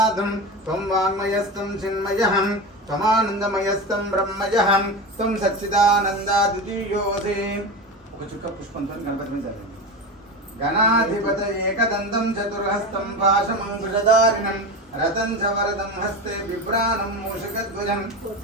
త్వం వాంగ్మయస్తం చిన్మయః త్వమానందమయస్తం బ్రహ్మయః త్వం సచ్చిదానందా ద్వితీయోసి. ఒక చుక్క పుష్పంతో గణపతి మీద చదవండి. గణాధిపత ఏకదంతం చతుర్హస్తం పాశమంకుశధారిణం రతం చ వరదం హస్తే బిభ్రాణం మూషికధ్వజం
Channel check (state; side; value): normal; both; correlation 0.23